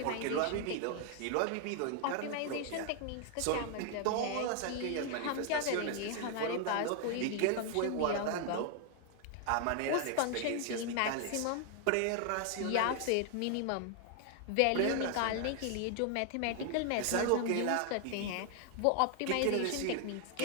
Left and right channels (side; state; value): both; different; correlation 0.00